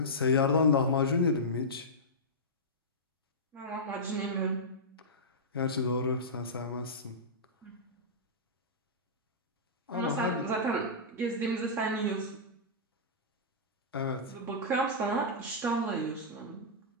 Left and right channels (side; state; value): both; normal; correlation -0.14